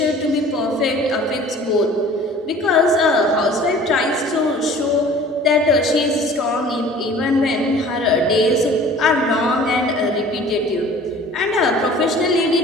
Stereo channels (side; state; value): both; normal; correlation 0.47